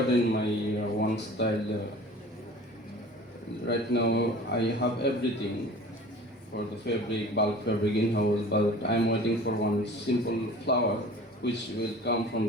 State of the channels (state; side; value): normal; both; correlation 0.43